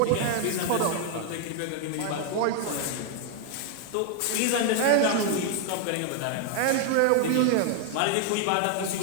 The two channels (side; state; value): both; different; correlation 0.00